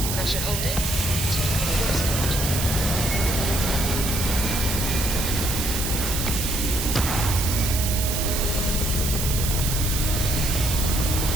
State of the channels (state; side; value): noise; right; hiss, 2 dB below the sound